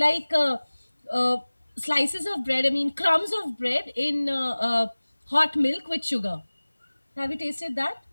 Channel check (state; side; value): inverted; both; correlation -1.00